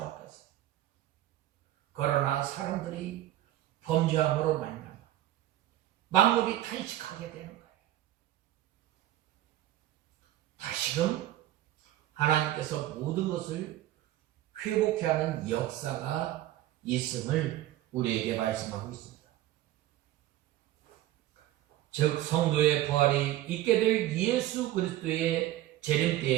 그러나 사람들이 범죄함으로 말미암아 만물이 탄식하게 되는 거예요. 다시금 하나님께서 모든 것을 회복해 하는 역사가 있음을 우리에게 말씀하고 있습니다. 즉 성도의 부활이 있게 될 예수 그리스도의 재림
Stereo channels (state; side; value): quieter; left; 14.3 dB